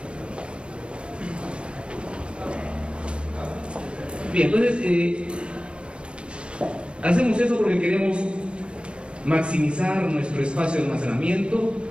entonces hacemos eso porque queremos maximizar nuestro espacio de almacenamiento,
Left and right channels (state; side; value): late; left; 0.058 ms